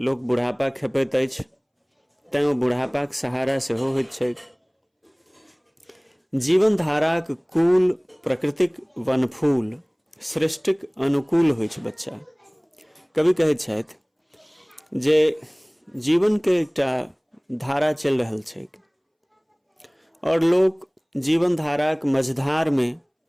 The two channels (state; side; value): identical; both; correlation 1.00